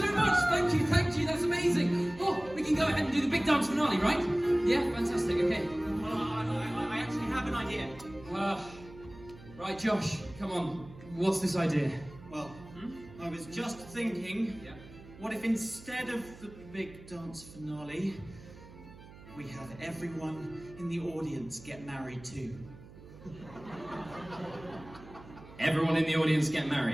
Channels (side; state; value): right; noise; hum, 19 dB below the sound